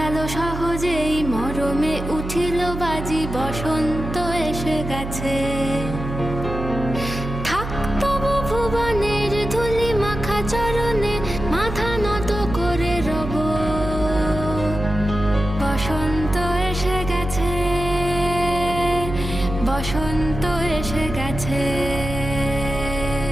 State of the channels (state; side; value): noise; right; hum, 7 dB below the sound